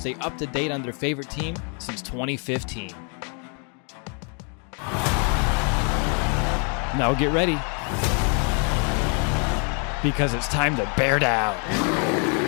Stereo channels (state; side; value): quieter; right; 38.3 dB